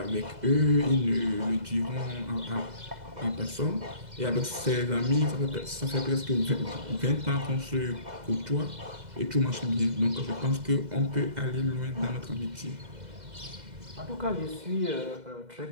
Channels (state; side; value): late; left; 2.0 ms